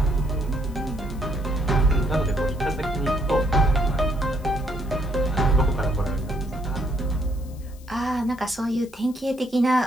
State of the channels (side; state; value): left; noise; hiss, 25 dB below the sound